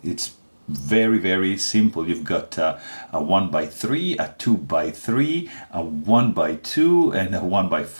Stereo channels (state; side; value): inverted; both; correlation -1.00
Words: It's very simple. You've got a 1x3, a 2x3, a 1x2 and a